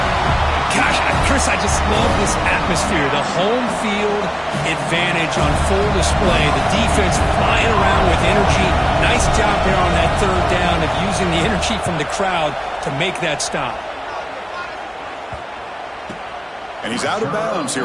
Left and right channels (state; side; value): identical; both; correlation 1.00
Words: Gosh, Chris, I just love this atmosphere. The home field advantage on full display. The defense flying around with energy. Nice job there on that third down of using the energy from the crowd to make that stop. And he's out of bounds